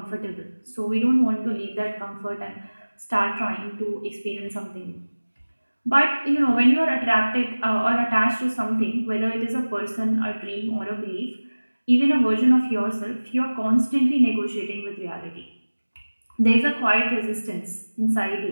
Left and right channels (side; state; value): both; inverted; correlation -1.00